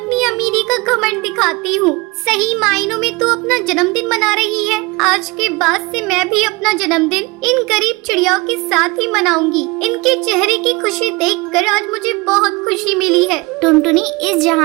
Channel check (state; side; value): quieter; left; 25.0 dB